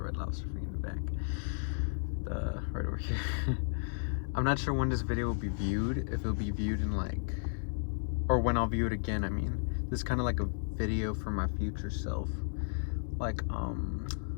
Lobster thing in the back. Right over here. I'm not sure when this video will be viewed, if it'll be viewed in or when I'll view it again, I mean. This is kind of like a video for my future self.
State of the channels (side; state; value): right; silent; digital silence